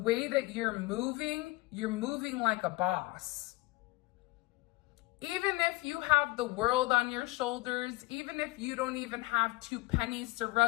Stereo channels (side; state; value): right; quieter; 21.6 dB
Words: that you're moving like a boss. Even if you have the world on your shoulders, even if you don't even have 2 pennies to